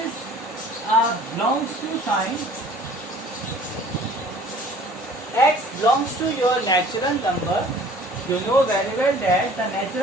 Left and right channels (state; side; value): normal; both; correlation 0.51